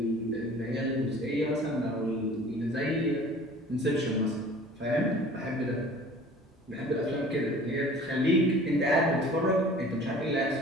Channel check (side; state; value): both; normal; correlation 0.46